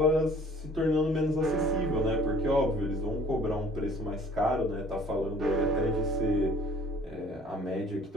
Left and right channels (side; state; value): both; normal; correlation 0.53